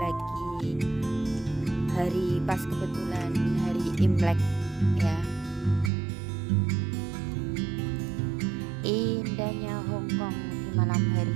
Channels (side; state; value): left; drops out; at 5.9 s